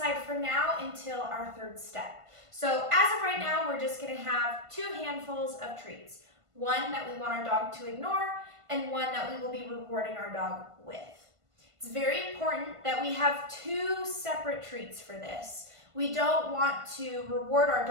for now until our 3rd step. So as of right now, we're just going to have 2 handfuls of treats. One that we want our dog to ignore, and one that we will be rewarding our dog with. It's very important that we have 2 separate treats for this. We don't want to reward our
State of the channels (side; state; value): left; late; 1.5 ms